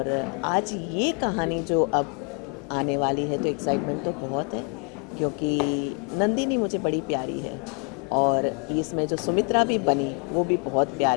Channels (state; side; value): quieter; right; 37.2 dB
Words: आज ये कहानी जो अब आने वाली है तो एक्साइटमेंट तो बहुत है, क्योंकि नंदिनी मुझे बड़ी प्यारी है और इसमें जो सुमित्रा भी बनी वो भी बहुत